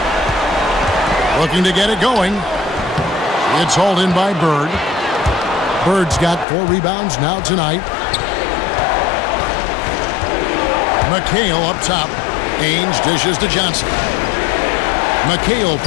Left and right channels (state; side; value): drops out; right; at 6.5 s